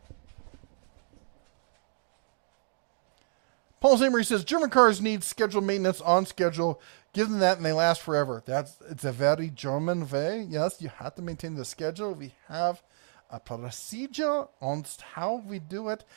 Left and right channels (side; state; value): left; silent; digital silence